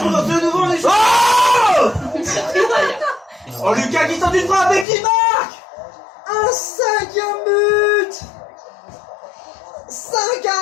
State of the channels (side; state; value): right; drops out; at 4.9 s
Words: de nouveau les Oh Oh, Lucas qui tente une frappe et qui marque un 5e but.